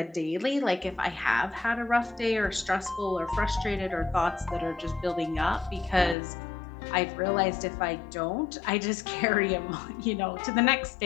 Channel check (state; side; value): drops out; right; at 6.2 s